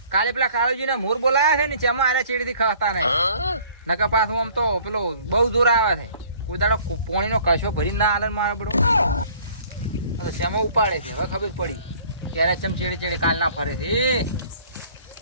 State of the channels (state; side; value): inverted; both; correlation -0.54